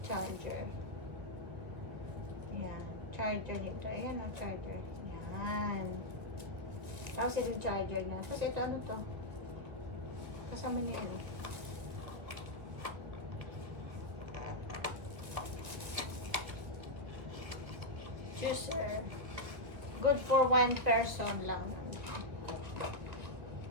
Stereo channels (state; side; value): late; left; 2.1 ms